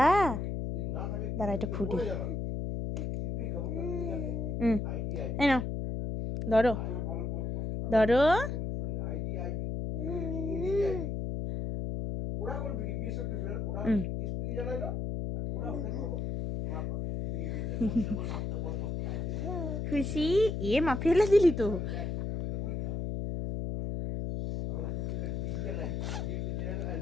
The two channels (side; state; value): left; noise; hum, 2 dB below the sound